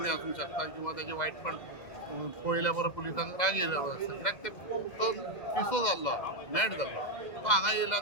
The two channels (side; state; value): right; late; 2.1 ms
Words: आसूंक शकता किंवा तेजे वायटपण पळयल्या बरो पुलिसांक राग येयलो आसता. कित्याक तो पिसो जाल्लो मॅड जाल्लो. तो हांगा येयलो